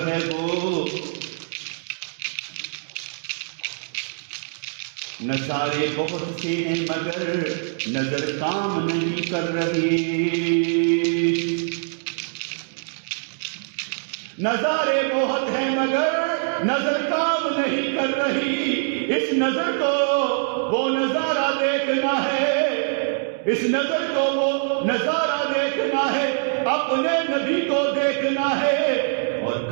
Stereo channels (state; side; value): silent; left; 63 dB below the other